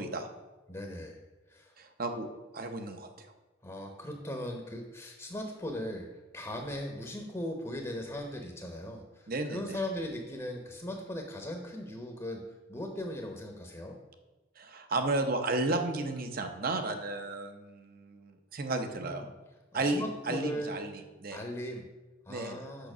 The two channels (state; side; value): normal; both; correlation 0.27